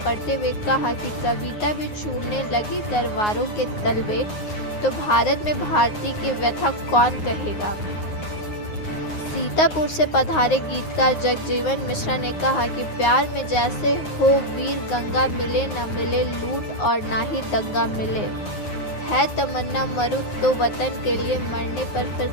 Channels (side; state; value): right; late; 9.5 ms